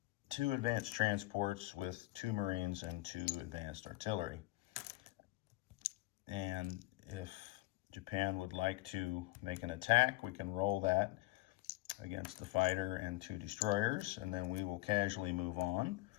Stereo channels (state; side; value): quieter; right; 19.4 dB